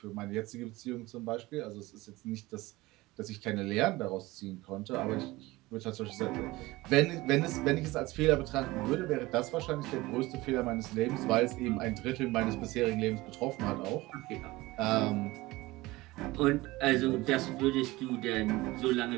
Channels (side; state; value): left; quieter; 20.0 dB